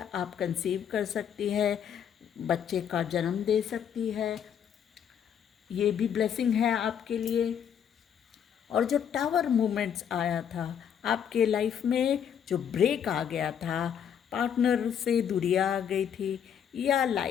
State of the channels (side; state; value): right; quieter; 8.5 dB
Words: आप कंसीव कर सकती है, बच्चे का जन्म दे सकती है, ये भी ब्लेसिंग है आपके लिए। और जो टावर मूवमेंट्स आया था आपके लाइफ में, जो ब्रेक आ गया था, पार्टनर से दूरियां आ गई थी, या